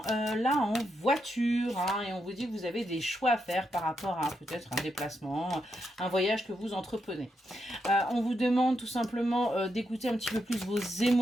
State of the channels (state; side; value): normal; both; correlation 0.82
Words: là en voiture hein, et on vous dit que vous avez des choix à faire par rapport à peut-être un déplacement, un voyage que vous entreprenez. On vous demande tout simplement d'écouter un petit peu plus vos